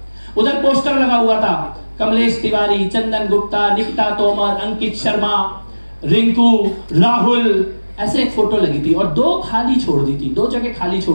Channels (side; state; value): both; inverted; correlation -1.00